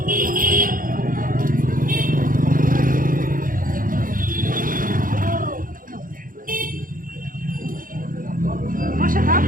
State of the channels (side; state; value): left; late; 0.40 ms